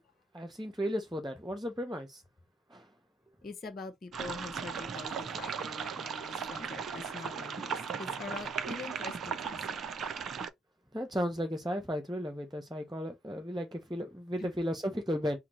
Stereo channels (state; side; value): normal; both; correlation 0.74